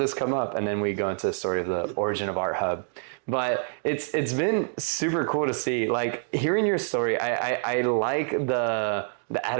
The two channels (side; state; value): left; silent; digital silence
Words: come up? And then we go into the story of the origin of Art Hub. But it's been super cool to see, like, hearing your story. I like the